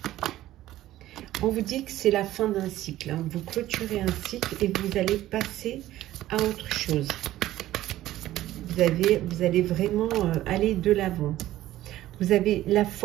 On vous dit que c'est la fin d'un cycle. Hein. Vous clôturez un cycle et vous allez passer à autre chose. Vous allez vraiment aller de l'avant. Vous avez la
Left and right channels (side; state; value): left; quieter; 14.6 dB